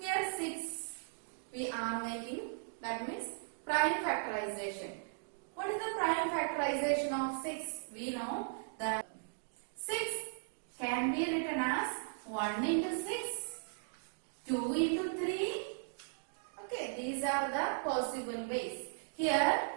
6 we are making, that means prime factorization. What is the prime factorization of 6? We know that 6 can be written as 1 into 6, 2 into 3. Okay, these are the possible ways. Here,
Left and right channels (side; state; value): left; silent; digital silence